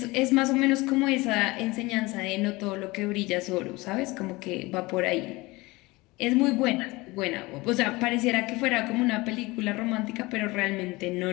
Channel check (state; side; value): quieter; right; 22.3 dB